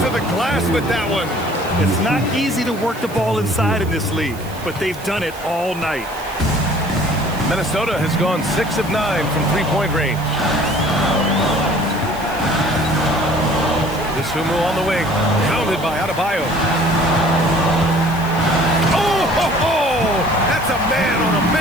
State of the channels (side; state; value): right; noise; hiss, 18 dB below the sound